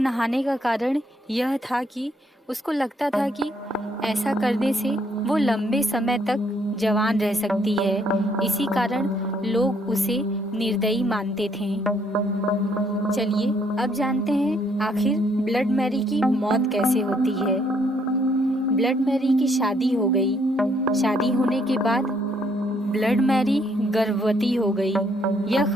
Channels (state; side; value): normal; both; correlation 0.69